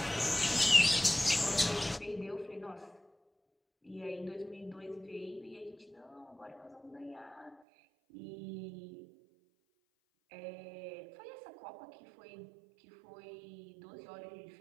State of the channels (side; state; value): left; drops out; at 7.6 s